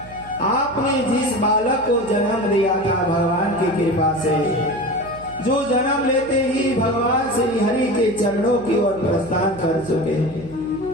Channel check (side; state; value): right; noise; hum, 19 dB below the sound